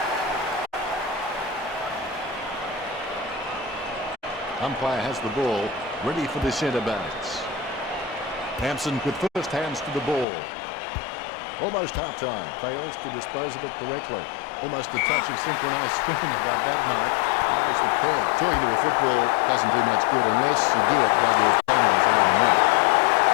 Umpire has the ball, ready for the centre bounce. Hampson with first hands to the ball. Almost half-time, fails to dispose of it correctly. Almost a touch of synchronised swimming about that mark. Notice the curve. Talking to a football doesn't do much good unless you do it while your opponent is lining up.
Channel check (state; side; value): drops out; right; at 10.2 s